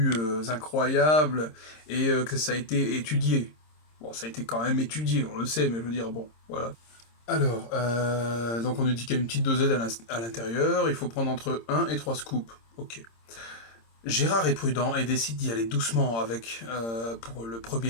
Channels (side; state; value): right; late; 26 ms